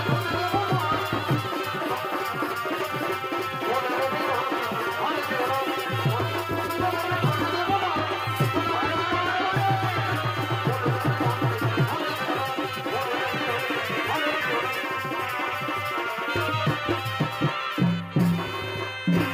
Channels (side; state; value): both; identical; correlation 1.00